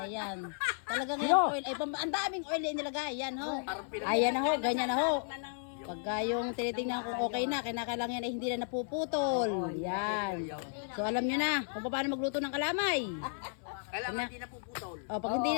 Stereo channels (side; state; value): right; silent; 55 dB below the other